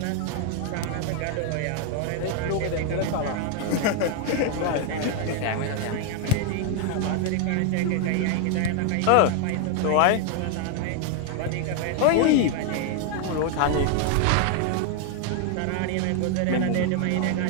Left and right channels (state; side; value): different; both; correlation 0.00